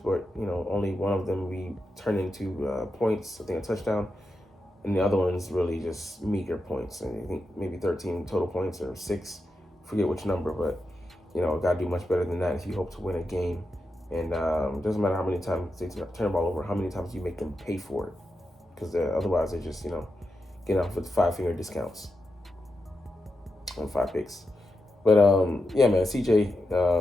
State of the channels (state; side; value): normal; both; correlation 0.88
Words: only one of them we turned into points, I think a touchdown. And the other one's really just meager points. And I think maybe 13 total points or 6. Forget which number, but, got to do much better than that if you hope to win a game. And it doesn't matter how many times they turn the ball over, how many times you make them pay for it. because otherwise they just get off with 5-finger discounts on 5 picks. But yeah, man, CJ